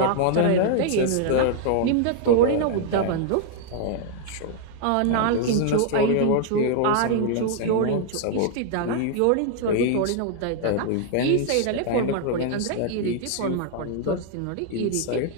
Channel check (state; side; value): different; both; correlation 0.00